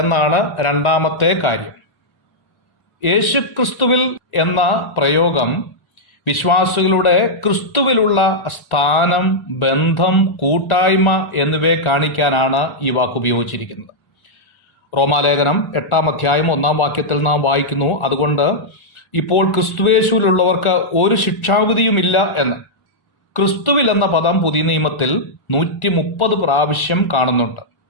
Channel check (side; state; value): right; late; 1.4 ms